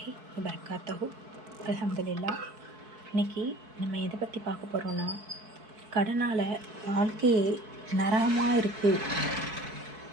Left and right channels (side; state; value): left; late; 4.6 ms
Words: வபரகாத்துஹு. அல்ஹம்துலில்லாஹ். இன்றைக்கி நம்ம எதை பற்றி பார்க்க போகிறோன்னா, கடனால் வாழ்க்கையே நரகமாக இருக்குது.